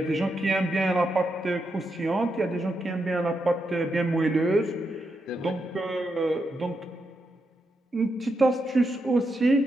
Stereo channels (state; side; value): normal; both; correlation 0.84